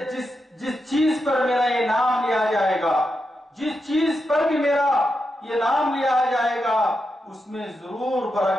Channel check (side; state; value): both; normal; correlation 0.86